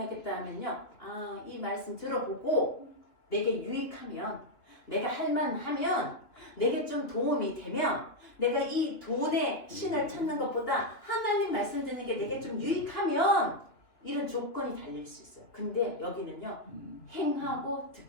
하면요. 아, 이 말씀 들어보고 내게 유익하면 내가 할만하면 내게 좀 도움이 되면 내가 이 돈의 신을 찾는 것보다 하나님 말씀 듣는 게 내게 좀 유익하면 이런 조건이 달릴 수 있어요. 근데 여기는요. 행하고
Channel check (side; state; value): right; late; 3.1 ms